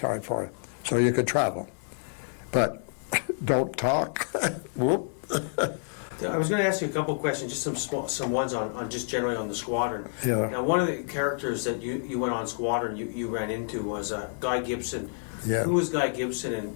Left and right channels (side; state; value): right; silent; digital silence